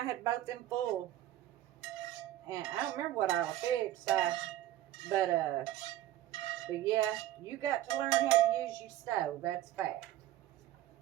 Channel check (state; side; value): quieter; left; 13.8 dB